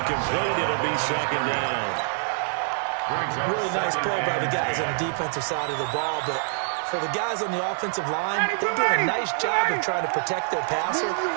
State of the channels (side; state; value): left; silent; 61 dB below the other